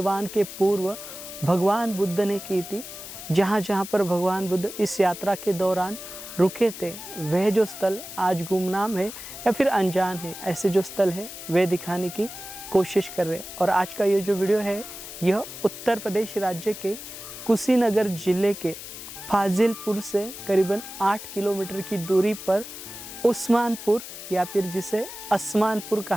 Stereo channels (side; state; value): left; noise; hiss, 11 dB below the sound